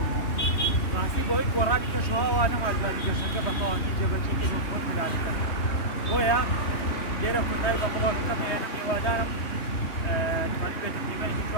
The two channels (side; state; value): right; late; 2.8 ms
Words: ڕاستی بۆی گۆڕانی کەشەوەوە نەمادوانی گەشتەکە بە تەواوی جێبەجێ و خۆش پلانەکە. بۆیە لێرە کۆتایی بە بڵۆژەکەم هێنم هیوادارم توانێت بێتە قیمەتێکی